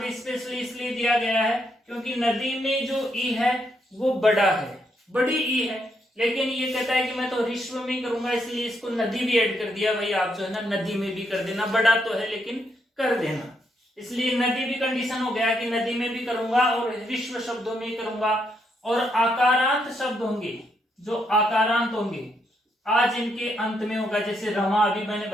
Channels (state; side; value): normal; both; correlation 0.77